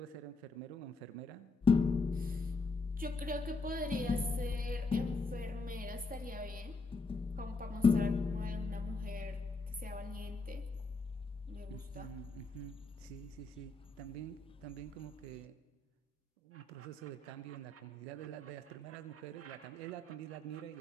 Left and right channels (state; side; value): quieter; right; 3.4 dB